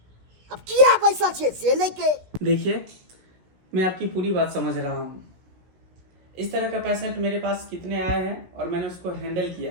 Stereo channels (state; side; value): late; left; 16 ms